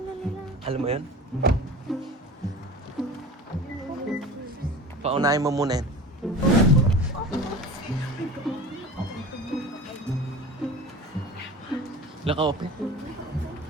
na nila? Alam mo yun? Paunahin mo muna yan. Naka-open.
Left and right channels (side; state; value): both; normal; correlation 0.38